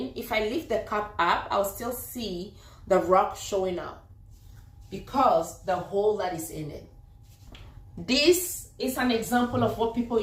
if I lift the cup up, I'll still see the rock showing up because the hole that is in it. This is an example of what people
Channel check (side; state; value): both; identical; correlation 1.00